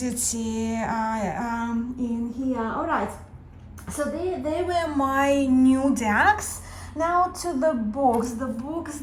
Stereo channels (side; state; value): both; identical; correlation 1.00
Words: in here. All right, so they were my new decks. Now to the books